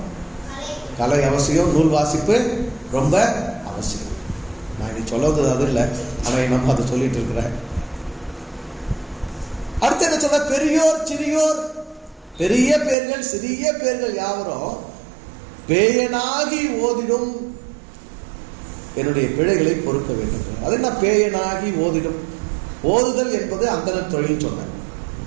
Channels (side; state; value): left; drops out; at 13.0 s